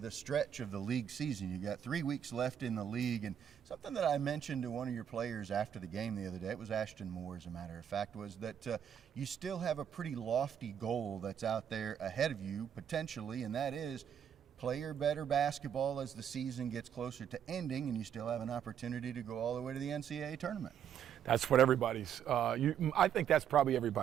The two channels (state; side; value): quieter; left; 8.9 dB